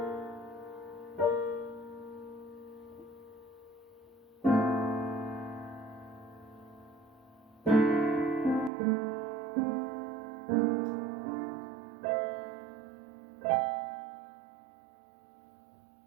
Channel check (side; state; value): left; drops out; at 8.7 s